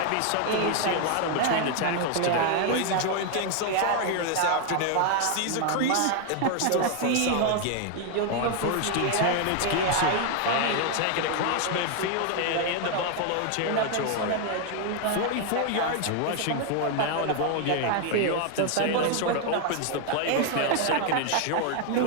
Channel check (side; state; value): both; different; correlation 0.00